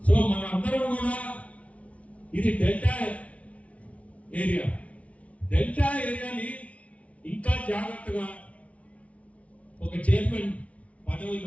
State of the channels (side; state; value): right; late; 0.065 ms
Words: సో మనందరం కూడా ఇది డెల్టా ఏరియాని ఇంకా జాగ్రత్తగా ఒక చైర్మన్